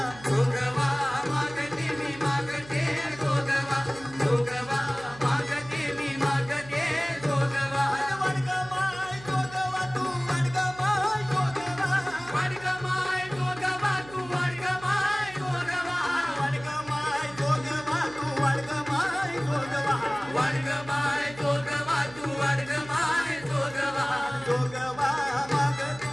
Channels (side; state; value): right; noise; hum, 18 dB below the sound